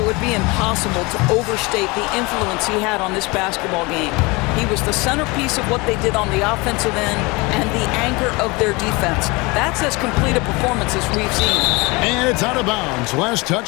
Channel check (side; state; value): right; quieter; 25.4 dB